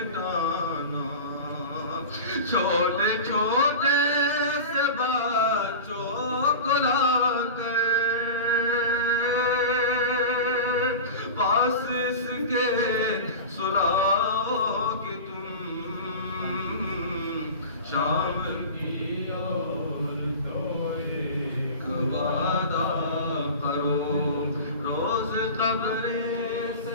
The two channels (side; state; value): both; inverted; correlation -0.32